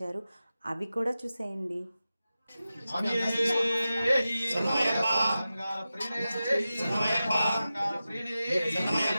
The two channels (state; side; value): inverted; both; correlation -0.94